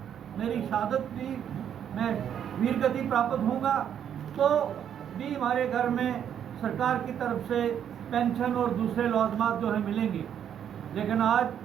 मेरी शहादत भी, मैं वीरगति प्राप्त होऊंगा तो भी हमारे घर में सरकार की तरफ से पेंशन और दूसरे लवाजमात जो है मिलेंगे। लेकिन आज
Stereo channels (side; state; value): left; quieter; 9.1 dB